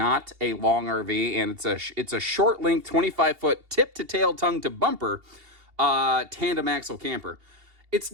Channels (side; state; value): left; late; 2.8 ms